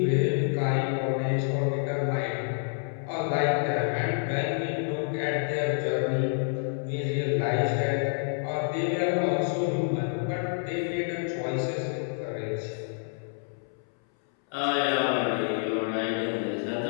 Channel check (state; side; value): silent; right; 59 dB below the other